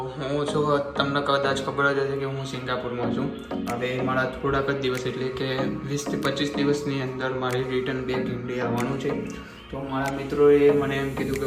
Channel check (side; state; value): both; identical; correlation 1.00